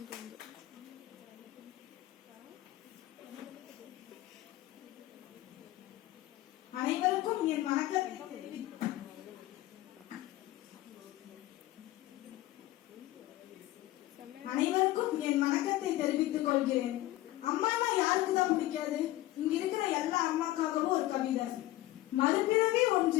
தோணுது. அனைவருக்கும் என் வணக்கத்தை தெரிவித்துக் கொள்கிறேன். அம்மானா யாருக்கு தான் பிடிக்காது? இங்க இருக்கிற எல்லா அம்மாக்காகவும் ஒரு கவிதை. மறுபிறவி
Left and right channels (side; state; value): right; quieter; 16.4 dB